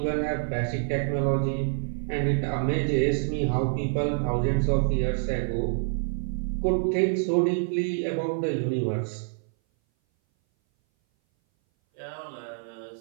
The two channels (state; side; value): silent; left; 58 dB below the other